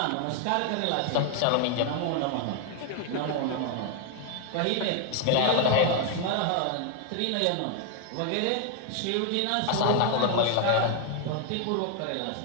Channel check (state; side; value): different; both; correlation 0.00